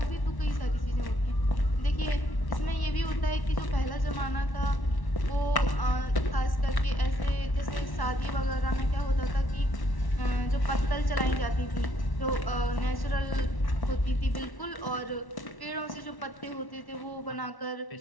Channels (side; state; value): right; late; 1.1 ms